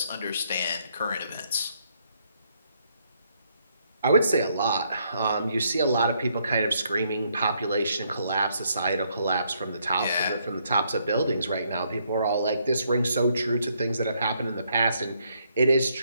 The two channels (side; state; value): both; inverted; correlation -0.72